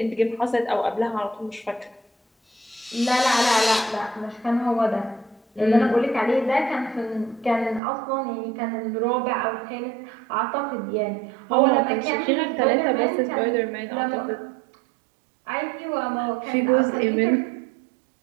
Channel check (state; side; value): drops out; left; at 7.8 s